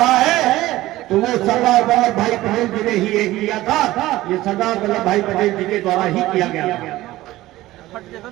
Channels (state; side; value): quieter; left; 16.7 dB